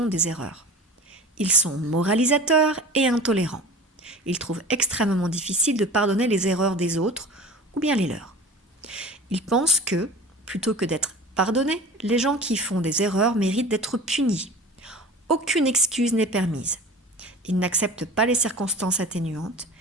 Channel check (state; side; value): normal; both; correlation 0.37